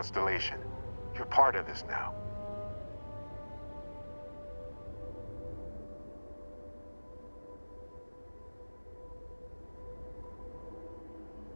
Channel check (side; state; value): both; inverted; correlation -1.00